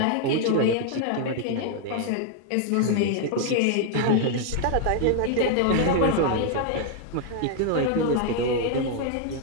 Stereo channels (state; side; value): different; both; correlation 0.00